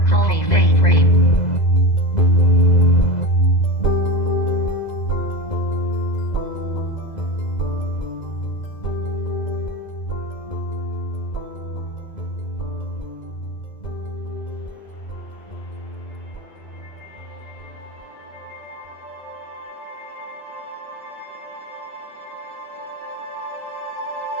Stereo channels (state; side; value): late; right; 2.0 ms